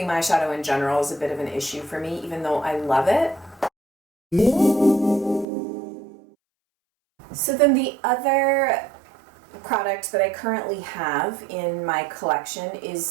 eyeshadow in general is a bit of an issue for me, even though I love it. So then the other product that I currently have in my collection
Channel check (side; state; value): left; drops out; at 5.5 s